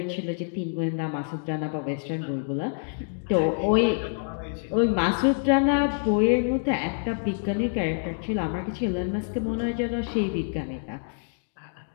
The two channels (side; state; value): right; silent; digital silence